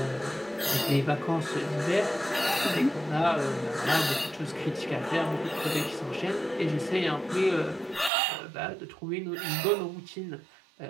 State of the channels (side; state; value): left; drops out; at 8.1 s